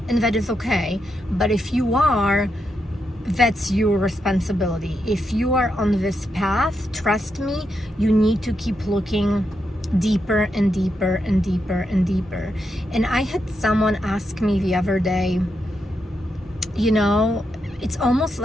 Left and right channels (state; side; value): normal; both; correlation 0.83